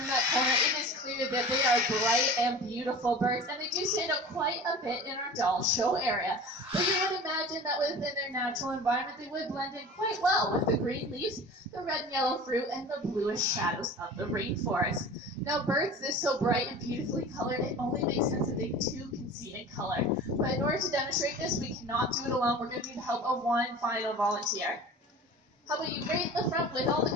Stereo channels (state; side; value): normal; both; correlation 0.38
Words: that corner, it is clear that they are bright and beautiful birds, and they do stand out quite a bit in our doll show area. But you would imagine that within their natural environment, they would blend in quite well with the green leaves, the red and yellow fruit, and the bluish shadows of the rainforest. Now, birds this so bright and beautifully colored, it only makes sense that they too can see in color. But in order to demonstrate this, we cannot do it alone. We're going to need the help of one final volunteer. How about you right in the front with all the